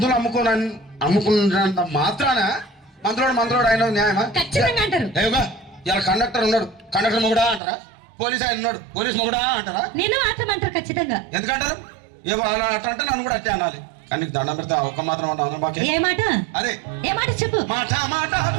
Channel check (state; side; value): drops out; left; at 7.6 s